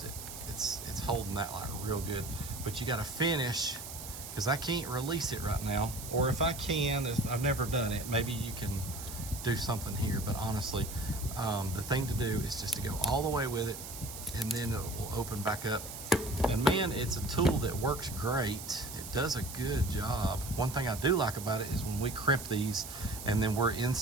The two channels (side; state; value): right; noise; hiss, 10 dB below the sound